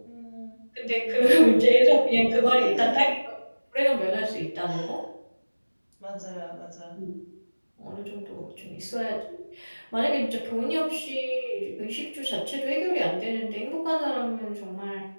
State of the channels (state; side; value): inverted; both; correlation -1.00